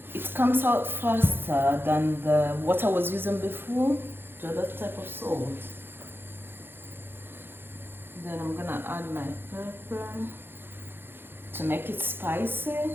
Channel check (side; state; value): left; late; 0.10 ms